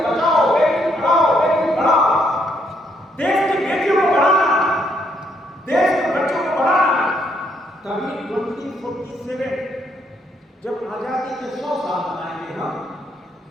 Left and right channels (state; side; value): normal; both; correlation 0.73